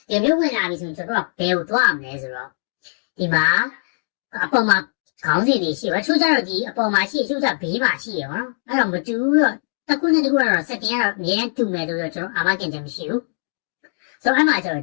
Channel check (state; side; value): silent; right; digital silence